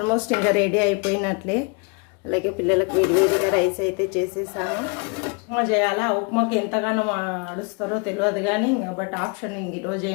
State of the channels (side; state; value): right; quieter; 34.1 dB